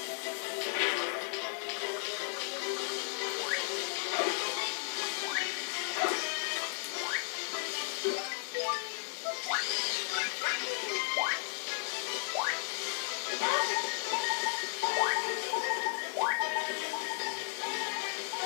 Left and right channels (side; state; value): right; silent; 55 dB below the other